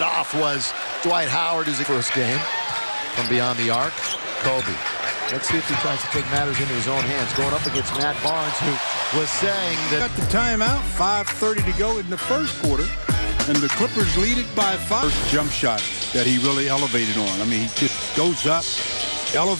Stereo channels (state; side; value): inverted; both; correlation -1.00